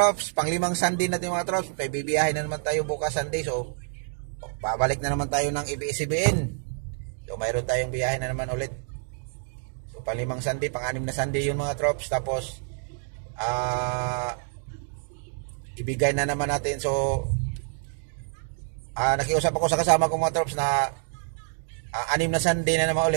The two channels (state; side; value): silent; left; 57 dB below the other